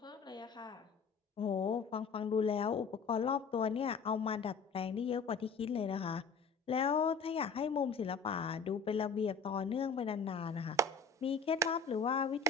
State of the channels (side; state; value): right; quieter; 4.9 dB